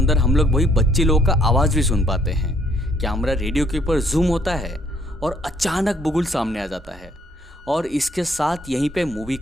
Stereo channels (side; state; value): both; normal; correlation 0.65